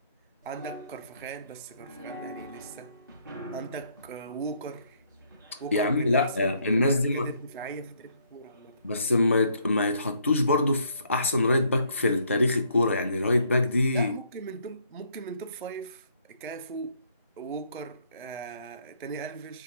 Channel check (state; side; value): inverted; both; correlation -0.68